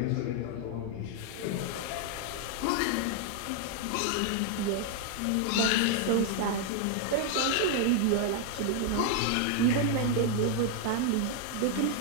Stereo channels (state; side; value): different; both; correlation 0.00